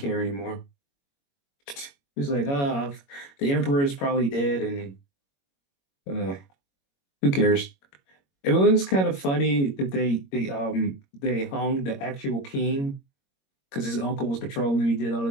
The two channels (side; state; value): right; late; 21 ms